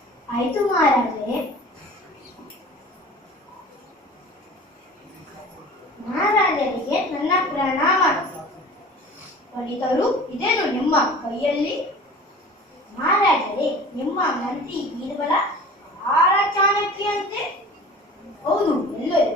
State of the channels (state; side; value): normal; both; correlation 0.41